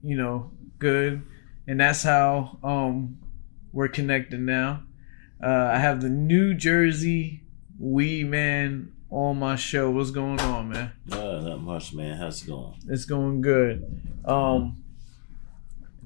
good. And that's how we're connected now. I have the New Jersey Weedman on my show. What's going on, man? Not much, man. How's it going? It's going good.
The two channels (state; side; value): silent; right; digital silence